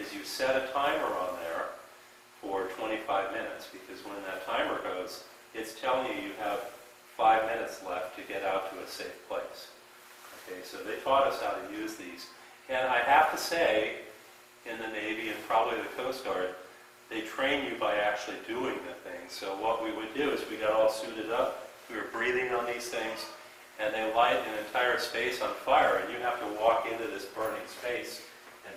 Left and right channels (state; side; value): identical; both; correlation 1.00